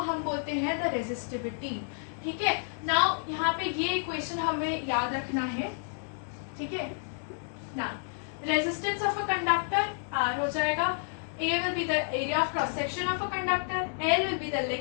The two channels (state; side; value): silent; right; 58 dB below the other